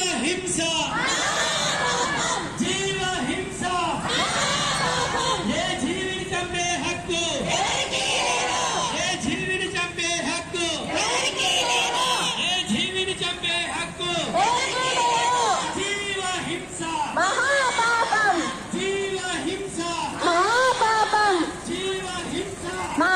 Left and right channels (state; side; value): identical; both; correlation 1.00